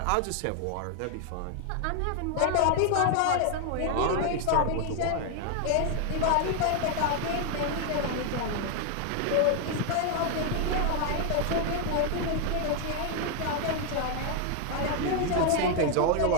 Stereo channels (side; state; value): both; different; correlation 0.00